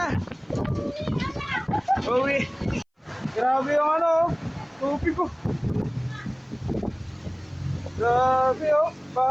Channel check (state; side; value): identical; both; correlation 1.00